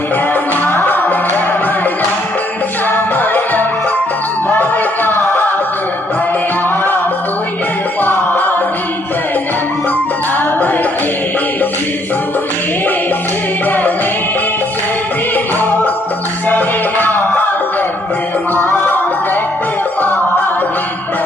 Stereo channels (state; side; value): normal; both; correlation 0.68